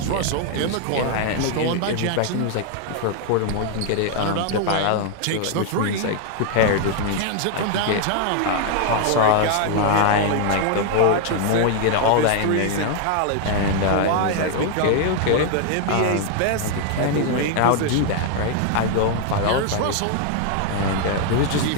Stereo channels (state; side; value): different; both; correlation 0.00